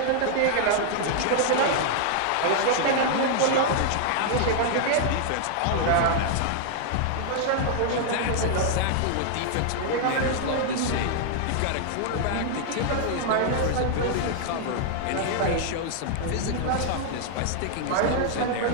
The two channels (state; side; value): different; both; correlation 0.00